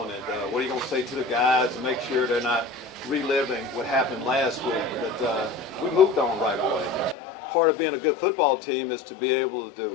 And what are you going to say to the guys to make sure they're not reliving what happened last week? But we moved on right away. Part of being a good football team is to be able to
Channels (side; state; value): right; drops out; at 7.2 s